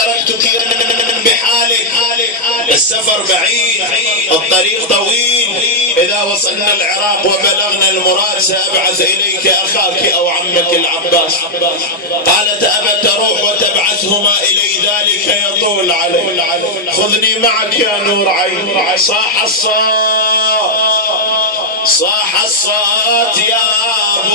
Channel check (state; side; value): normal; both; correlation -0.03